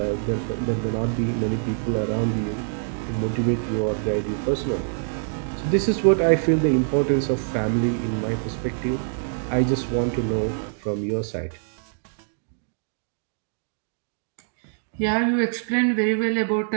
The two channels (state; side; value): silent; left; digital silence